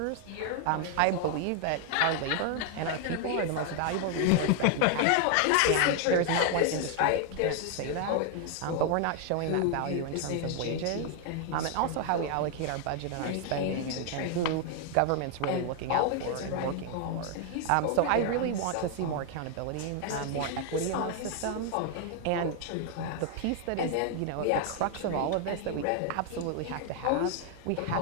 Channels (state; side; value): different; both; correlation 0.00